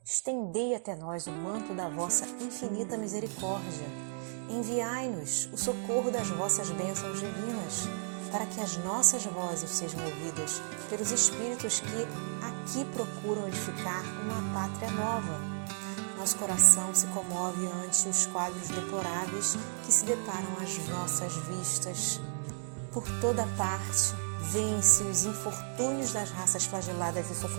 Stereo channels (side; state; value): left; silent; digital silence